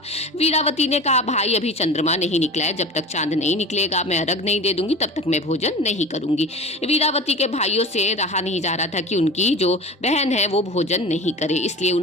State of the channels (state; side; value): normal; both; correlation 0.34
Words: वीरावती ने कहा, भाई अभी चंद्रमा नहीं निकला है, जब तक चांद नहीं निकलेगा मैं अर्घ नहीं दे दूंगी, तब तक मैं भोजन नहीं करूंगी। वीरावती के भाइयों से रहा नहीं जा रहा था कि उनकी जो बहन है वो भोजन नहीं करे, इसलिए